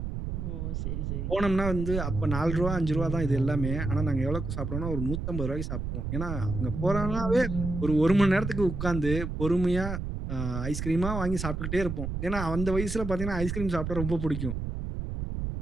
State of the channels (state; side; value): noise; right; rumble, 4 dB below the sound